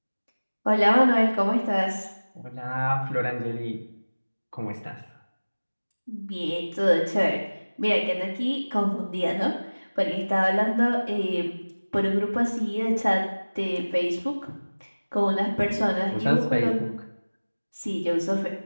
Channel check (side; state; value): both; inverted; correlation -1.00